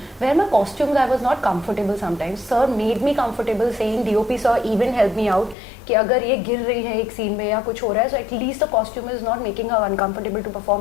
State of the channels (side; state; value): right; drops out; at 5.6 s